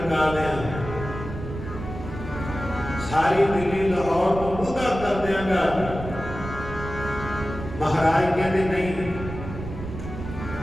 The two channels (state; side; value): noise; right; rumble, 9 dB below the sound